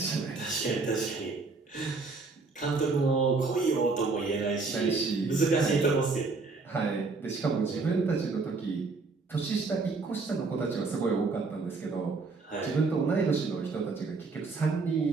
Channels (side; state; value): left; quieter; 4.0 dB